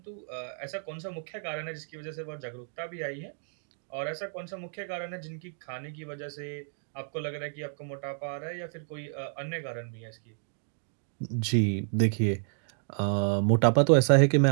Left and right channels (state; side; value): silent; left; digital silence